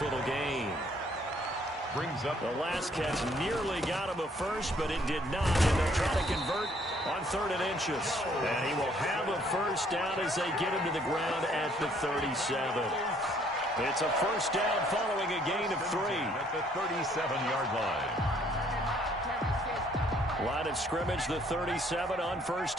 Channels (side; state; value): both; normal; correlation 0.63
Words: little gain. Brings up the last catch nearly got him a first, but it did not. And they'll try to convert on 3rd and inches. And he will have a first down as they get him to the ground at the 37. It's a first down following a gain of 3. At the 37-yard line. Line of scrimmage, the 37 on